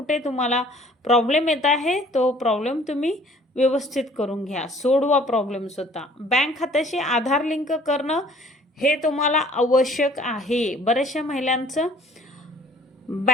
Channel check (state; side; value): normal; both; correlation 0.55